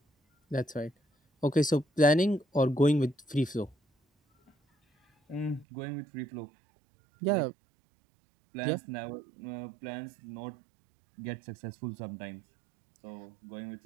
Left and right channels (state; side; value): drops out; left; at 5.7 s